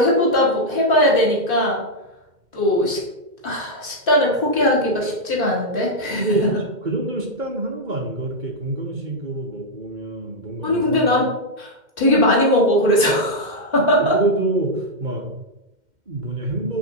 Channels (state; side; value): late; left; 2.1 ms